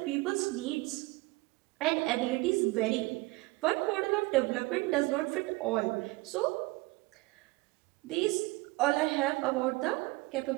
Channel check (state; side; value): quieter; left; 23.0 dB